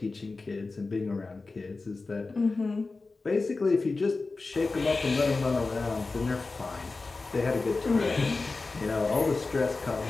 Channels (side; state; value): right; quieter; 3.7 dB